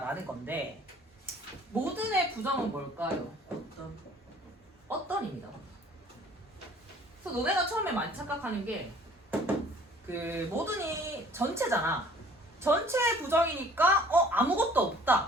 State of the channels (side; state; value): both; normal; correlation 0.53